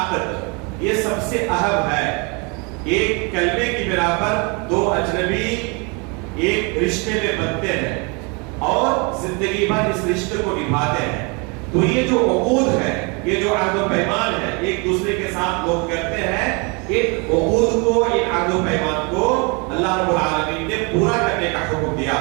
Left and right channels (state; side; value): quieter; left; 31.3 dB